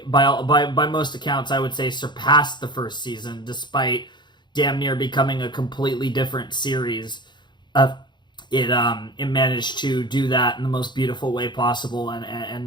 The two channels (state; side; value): late; right; 0.22 ms